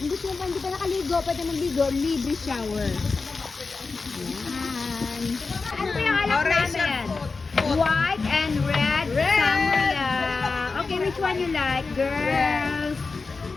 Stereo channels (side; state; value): right; quieter; 4.2 dB